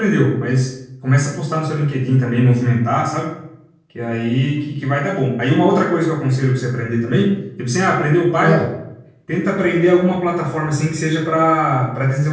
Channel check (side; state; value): both; identical; correlation 1.00